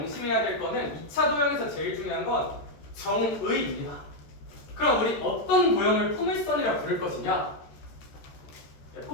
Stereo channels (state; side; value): late; right; 14 ms